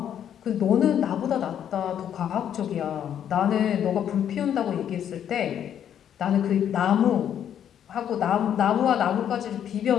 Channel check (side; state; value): right; quieter; 9.5 dB